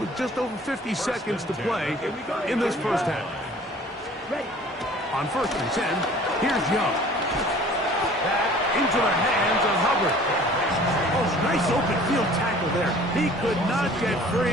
just over 50 seconds to play in this first half. ready. On 1st and 10, here's Young. Back into the hands of Hubbard. Oh, nice open field tackle there. He could not get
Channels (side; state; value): both; normal; correlation 0.49